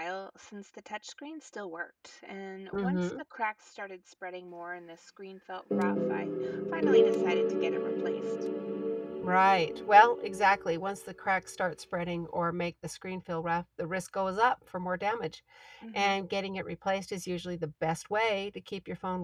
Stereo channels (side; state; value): both; identical; correlation 1.00